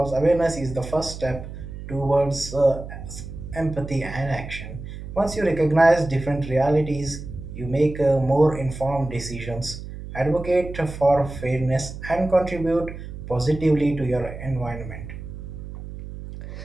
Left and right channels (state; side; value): noise; right; hum, 11 dB below the sound